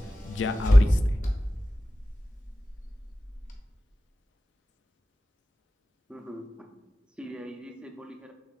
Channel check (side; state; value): both; normal; correlation 0.95